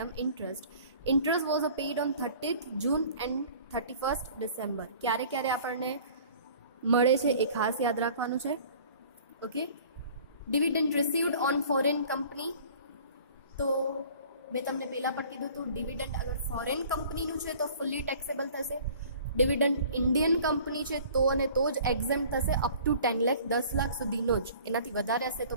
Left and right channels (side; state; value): both; inverted; correlation -0.49